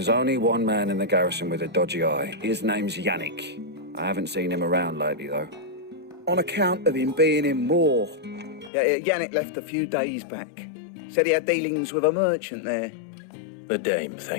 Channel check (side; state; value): right; drops out; at 8.7 s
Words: only one man in the garrison with a dodgy eye. His name's Yannick. I haven't seen him around lately, though. On account of him being in war. Yannick left a few days back. Said he had dealings with a merchant there. The dame